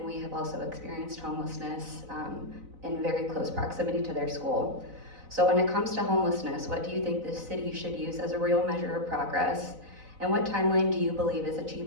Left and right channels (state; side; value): late; left; 4.0 ms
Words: we have also experienced homelessness in very close proximity to their school. So when it comes to homelessness, what do you think the city should use as a real measure of progress? And what timeline do you believe is